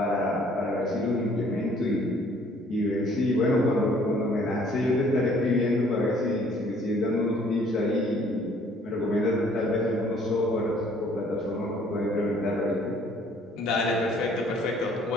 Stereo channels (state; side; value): normal; both; correlation 0.59